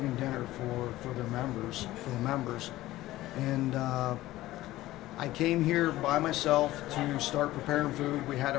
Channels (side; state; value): right; quieter; 16.4 dB